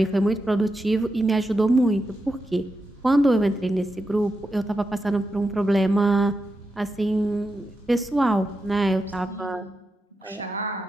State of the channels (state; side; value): normal; both; correlation 0.87